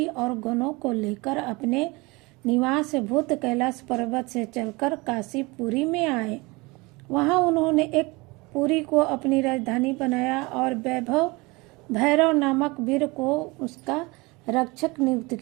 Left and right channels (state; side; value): quieter; left; 24.8 dB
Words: और गणों को लेकर अपने निवास भूत कैलाश पर्वत से चलकर काशीपुरी में आए। वहां उन्होंने एक पुरी को अपनी राजधानी बनाया और भैरव नामक वीर को उसका रक्षक नियुक्त